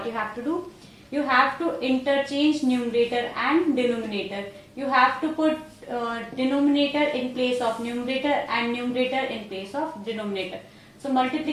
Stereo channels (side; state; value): both; identical; correlation 1.00